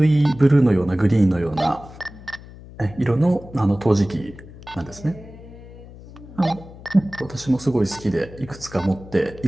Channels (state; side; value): noise; left; hum, 18 dB below the sound